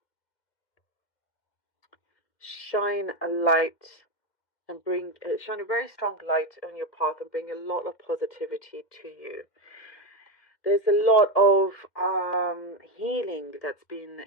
shine a light and shine a very strong light on your path and bring a lot of positivity to you. There's a lot of healing that's been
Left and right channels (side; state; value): right; late; 2.1 ms